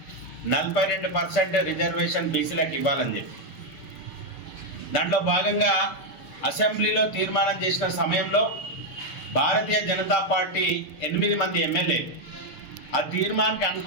42% రిజర్వేషన్ బీసీలకు ఇవ్వాలని చెప్పి, దాంట్లో భాగంగా అసెంబ్లీలో తీర్మానం చేసిన సమయంలో భారతీయ జనతా పార్టీ 8 మంది ఎమ్మెల్యేలు ఆ తీర్మానానికి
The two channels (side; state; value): right; late; 6.7 ms